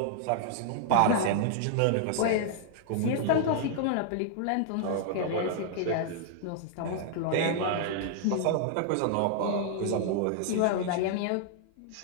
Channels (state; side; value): different; both; correlation -0.01